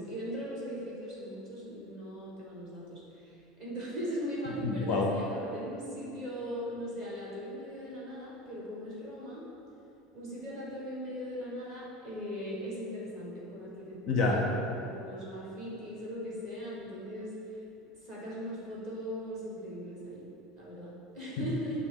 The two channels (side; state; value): both; normal; correlation 0.30